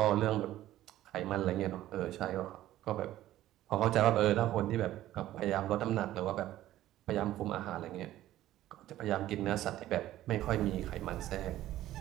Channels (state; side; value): quieter; left; 14.1 dB